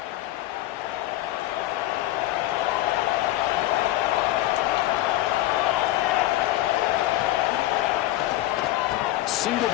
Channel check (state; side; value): quieter; right; 15.6 dB